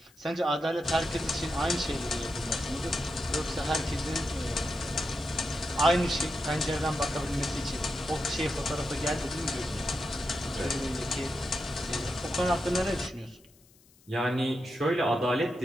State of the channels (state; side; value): noise; left; hiss, 29 dB below the sound